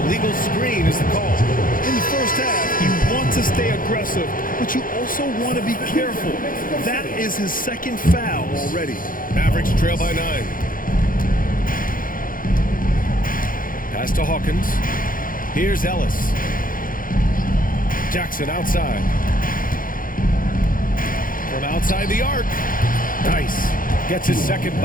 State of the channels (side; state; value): right; late; 0.40 ms